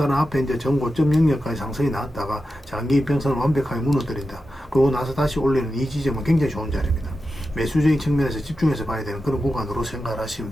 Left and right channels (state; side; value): normal; both; correlation 0.91